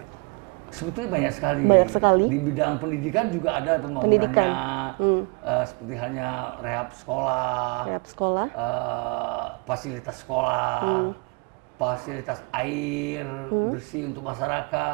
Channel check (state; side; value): quieter; left; 31.8 dB